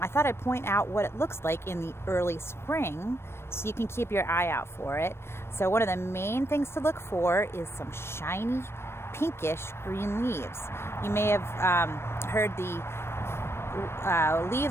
thought I'd point out what it looks like in the early spring, so you can keep your eye out for it. So one of the main things to look for is some shiny, pinkish green leaves. You may have heard the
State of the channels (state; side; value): late; right; 0.12 ms